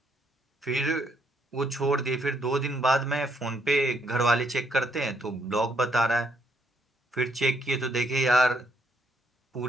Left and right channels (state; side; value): normal; both; correlation 0.72